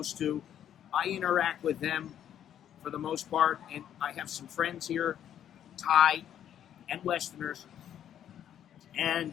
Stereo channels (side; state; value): right; quieter; 10.1 dB